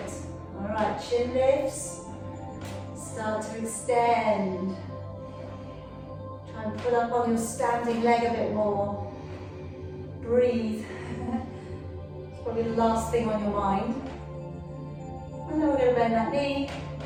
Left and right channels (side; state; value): both; identical; correlation 1.00